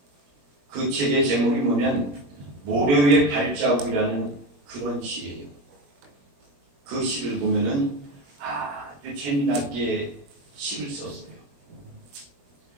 그 책의 제목이 뭐냐면 모래 위의 발자국이라는 그런 시예요. 그 시를 보면은 아주 재미나게 시를 썼어요.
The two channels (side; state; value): left; late; 21 ms